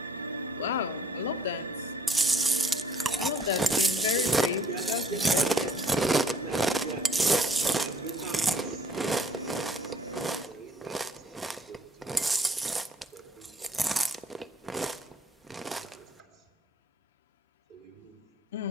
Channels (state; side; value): normal; both; correlation 0.58